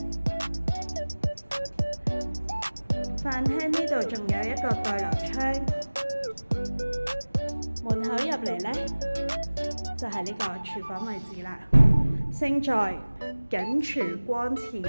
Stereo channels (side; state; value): both; inverted; correlation -1.00